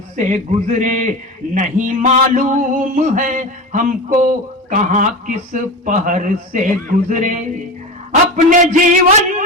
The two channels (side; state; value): both; normal; correlation 0.25